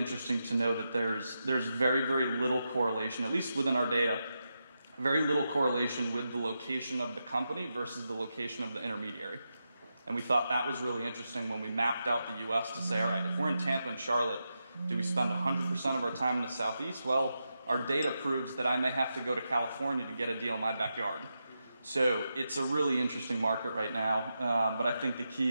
to know that there's very, very little correlation, at least within our data, very little correlation with the location of the company versus the location of the intermediary. And we thought that was really interesting when we mapped out the U.S. to say, all right, if we're in Tampa and Charlotte, do we spend 100% of our time in the Southeast? Well, our data proves that I may have to go to California to get a deal in my backyard. So it's a really interesting market right now. But I think the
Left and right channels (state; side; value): inverted; both; correlation -0.87